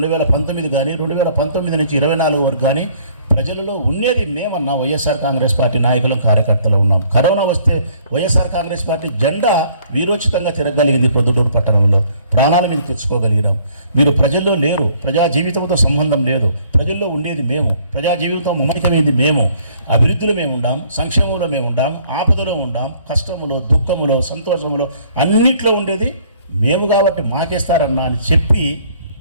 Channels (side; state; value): both; inverted; correlation -0.60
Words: కానీ, 2019 నుంచి 24 వరకు కానీ ప్రజలలో ఉండేది మేమన్నా. వైఎస్ఆర్ కాంగ్రెస్ పార్టీ నాయకులం, కార్యకర్తలు ఉన్నాం. కరోనా వస్తే వైఎస్ఆర్ కాంగ్రెస్ పార్టీ జెండా వీరోచితంగా తిరగలిగింది. ప్రొద్దుటూరు పట్టణంలో ప్రాణాల మీద తెచ్చుకోగలిగినాం. మీరు ప్రజల్లో లేరు. ప్రజా జీవితంతో సంబంధం లేదు. ప్రజల్లో ఉండేది మేము. ప్రజా జీవితం మమేకమైంది మేము. అభివృద్ధిలో మేము ఉండాం, సంక్షేమంలో మేము ఉండాం, ఆపదలో ఉండాం, కష్టములో, దుఃఖములో, సంతోషములో అన్నిట్లో ఉండేది మేము. కాబట్టి మాకేస్తారన్నా అని చెప్పి